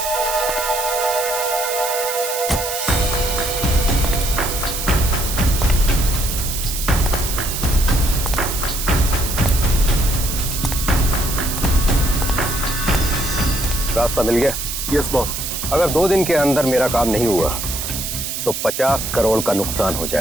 रास्ता मिल गया? Yes boss. अगर 2 दिन के अंदर मेरा काम नहीं हुआ तो 50 करोड़ का नुकसान हो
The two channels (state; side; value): noise; right; hiss, 4 dB below the sound